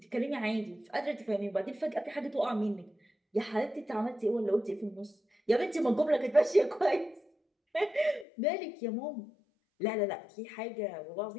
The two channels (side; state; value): right; drops out; at 8.2 s